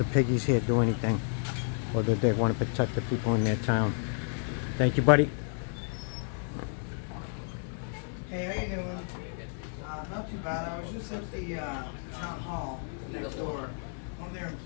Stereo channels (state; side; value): silent; right; 57 dB below the other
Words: piggies here do anything, or that they want to protect the people in their town. Thank you, buddy. Hey, how you doing? Not too bad. I was just at the town hall next door. One of their